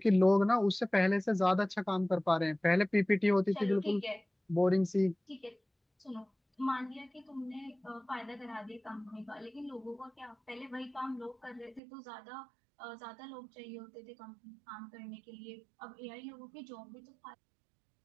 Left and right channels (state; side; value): drops out; left; at 11.8 s